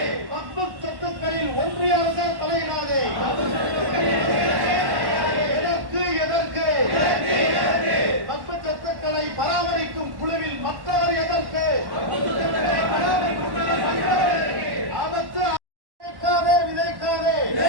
வக்ஃபு சொத்துக்களில் ஒன்றிய அரசு தலையிடாதே. எதற்கு வக்ஃபு சொத்துக்களை பராமரிக்கும் குழுவில் மக்கள் எதற்கு? ஆபத்து விதைக்காதே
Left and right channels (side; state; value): left; late; 1.1 ms